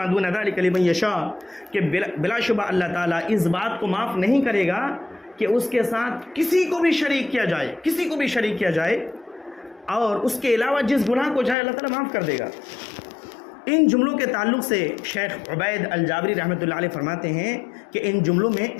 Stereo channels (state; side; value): drops out; right; at 11.6 s